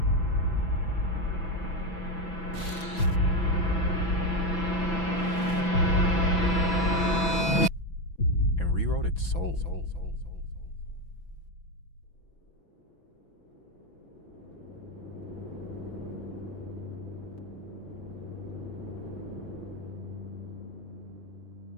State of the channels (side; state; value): right; late; 6.0 ms